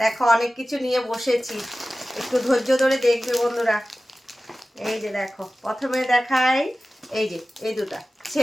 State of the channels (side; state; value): both; normal; correlation 0.96